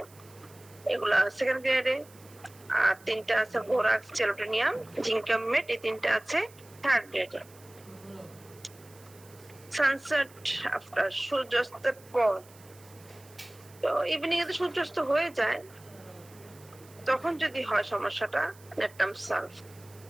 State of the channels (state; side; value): noise; right; hiss, 24 dB below the sound